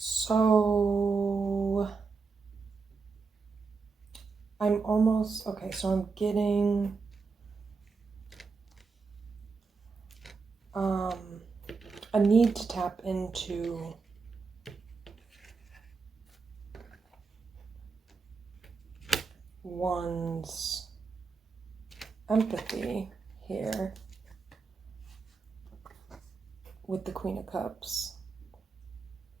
almost, okay, so I'm getting a need to tap into one's empathy here with the Queen of Cups.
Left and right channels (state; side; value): quieter; left; 4.7 dB